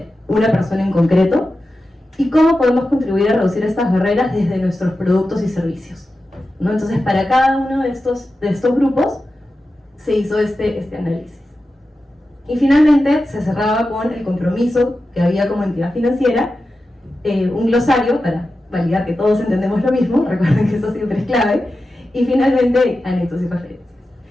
una persona en concreto, y cómo podemos contribuir a reducir estas barreras desde nuestros productos y servicios, ¿no? Entonces, para cada uno de estos grupos se hizo este análisis. Y finalmente se cerraba con el compromiso que había como entidad financiera, un glosario para validar que todos entendemos lo mismo, recuerden que eso siempre es clave, y finalmente anexos y referencias.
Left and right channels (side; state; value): both; normal; correlation 0.92